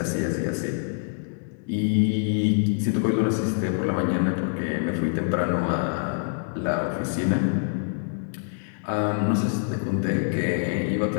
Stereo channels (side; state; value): right; silent; digital silence